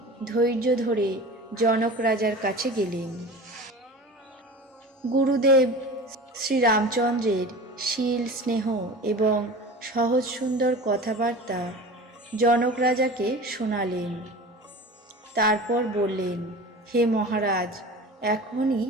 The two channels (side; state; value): both; normal; correlation 0.35